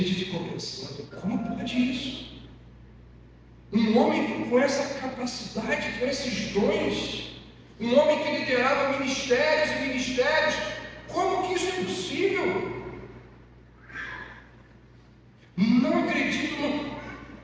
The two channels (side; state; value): both; identical; correlation 1.00